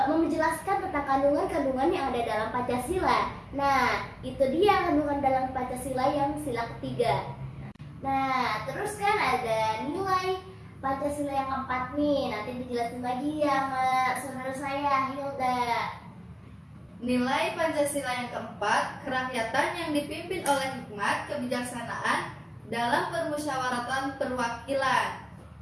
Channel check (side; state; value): both; identical; correlation 1.00